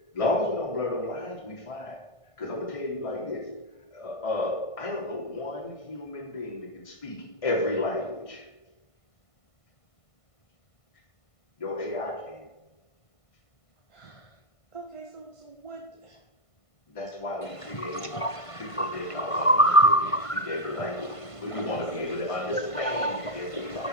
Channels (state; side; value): late; right; 1.5 ms